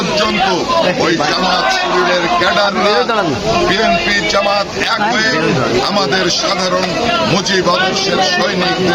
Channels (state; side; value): identical; both; correlation 1.00